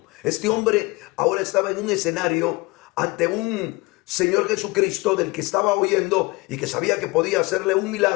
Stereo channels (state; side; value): quieter; right; 24.1 dB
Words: Este hombre ahora estaba en un escenario ante un Señor Jesucristo del que estaba oyendo y que sabía que podía hacerle un